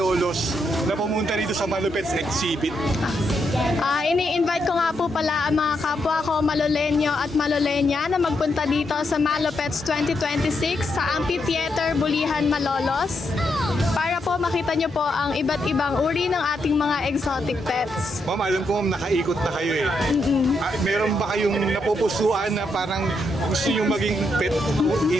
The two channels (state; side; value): normal; both; correlation 0.80